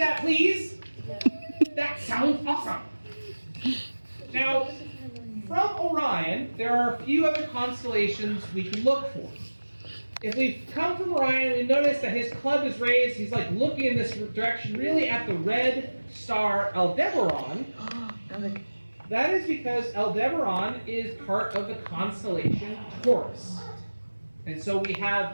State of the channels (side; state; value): both; inverted; correlation -1.00